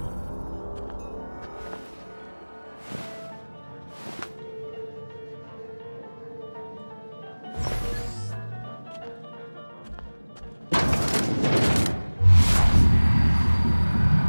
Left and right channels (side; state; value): both; inverted; correlation -1.00